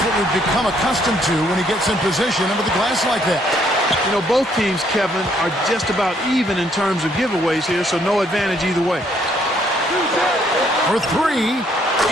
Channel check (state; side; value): normal; both; correlation 0.68